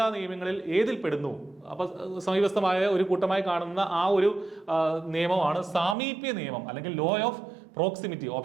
നിയമങ്ങളിൽ ഏതിൽ പെടുന്നു? അപ്പൊ സമീപസ്ഥമായ ഒരു കൂട്ടമായി കാണുന്ന ആ ഒരു നിയമമാണ് സാമീപ്യ നിയമം അല്ലെങ്കിൽ law of proximity.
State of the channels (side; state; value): left; drops out; at 6.0 s